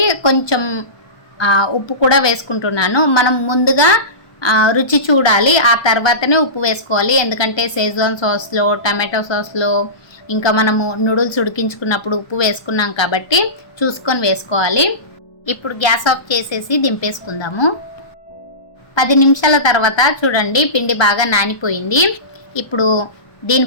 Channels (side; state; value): right; late; 1.3 ms